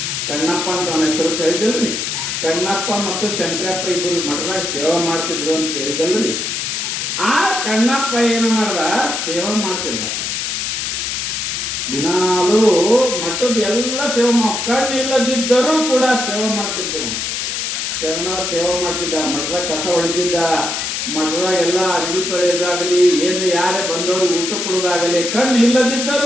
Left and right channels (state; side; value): noise; left; hiss, 2 dB below the sound